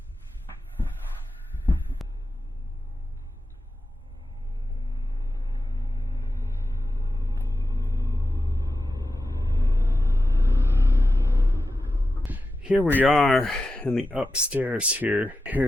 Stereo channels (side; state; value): both; normal; correlation 0.91